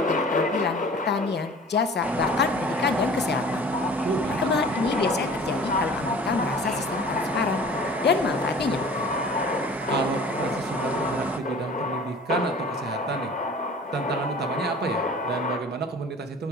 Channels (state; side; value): normal; both; correlation 0.45